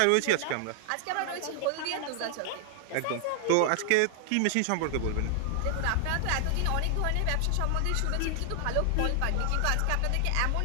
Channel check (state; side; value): different; both; correlation 0.00